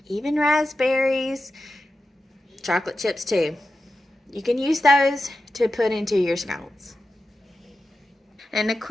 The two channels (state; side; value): normal; both; correlation 0.91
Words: even raspberries, chocolate chips too. You can use those to put into your scones. And a